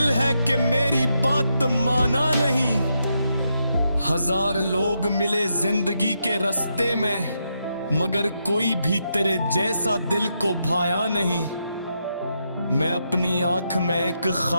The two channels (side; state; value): both; inverted; correlation -0.82